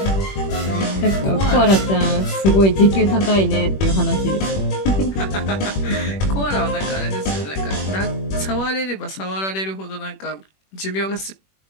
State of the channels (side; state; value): right; late; 21 ms